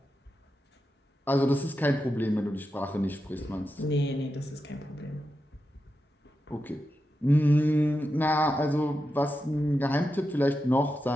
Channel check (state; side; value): normal; both; correlation 0.89